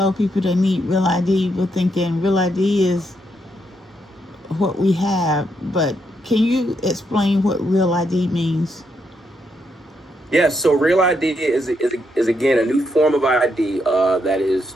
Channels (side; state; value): both; normal; correlation 0.78